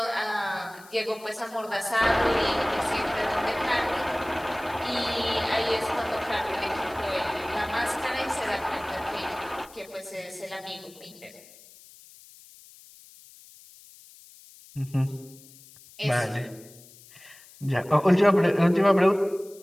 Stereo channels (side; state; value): left; noise; hiss, 22 dB below the sound